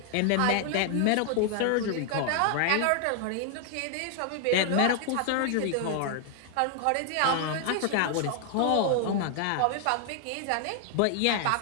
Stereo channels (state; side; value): different; both; correlation 0.00